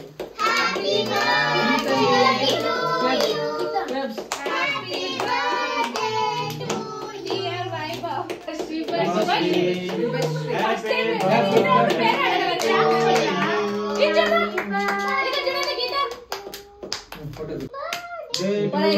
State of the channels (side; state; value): both; identical; correlation 1.00